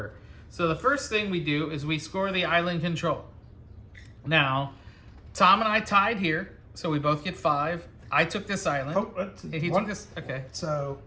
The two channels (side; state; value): both; identical; correlation 1.00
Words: So the first thing we do is we score the island control. Now, Tom and I tied here, so we both get 5. I took this island. Oh, that's He one- took this, okay. So,